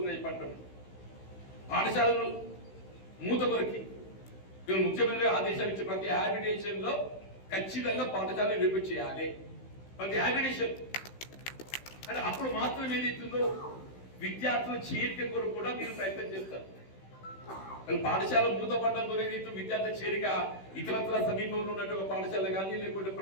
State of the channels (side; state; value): right; late; 16 ms